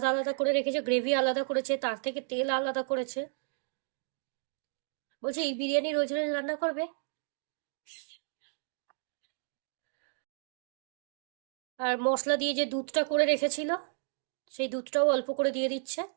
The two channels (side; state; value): left; silent; digital silence